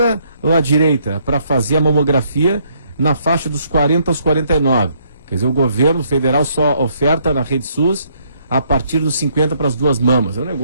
ou a direita? Para fazer a mamografia na faixa dos 40 aos 49. Quer dizer, o governo federal só oferta na Rede SUS a partir dos 50 para as duas mamas. É um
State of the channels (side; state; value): both; inverted; correlation -0.69